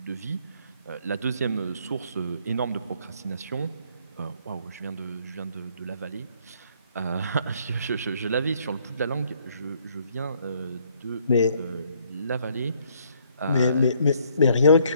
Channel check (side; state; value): both; inverted; correlation -0.66